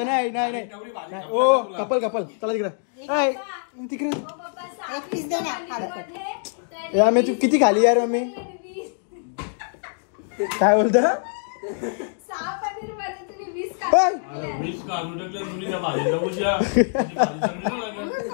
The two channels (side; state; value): right; silent; digital silence